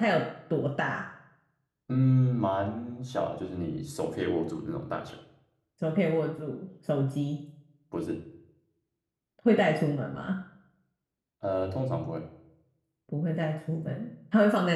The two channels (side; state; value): both; identical; correlation 1.00